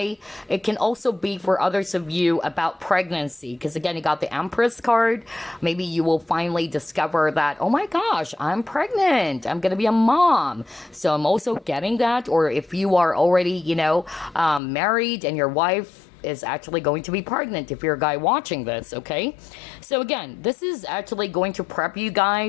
It can also be for others of you about pregnancy, because again, you got the Empress card. Maybe you will finally discover that, oh my gosh, I'm pregnant. I'm going to be a mom. So I'm also getting that. Or if you are already, you know, married and your wife is actually going to be pregnant, if you're a guy watching this, okay? So again, this is actually going to prep you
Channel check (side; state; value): right; drops out; at 14.6 s